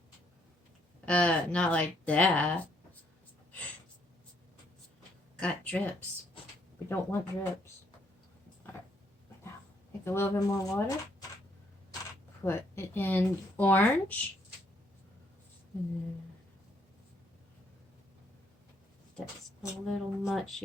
Not like that. Got drips. We don't want drips. Alright. Now, take a little bit more water. Put it in orange. That's a little much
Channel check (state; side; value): normal; both; correlation 0.70